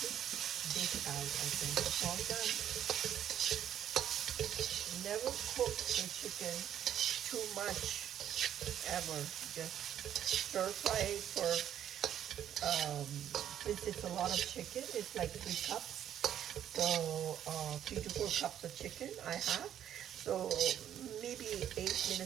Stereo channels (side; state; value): left; quieter; 10.4 dB